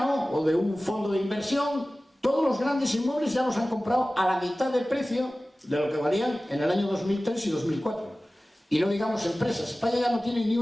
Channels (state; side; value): normal; both; correlation 0.97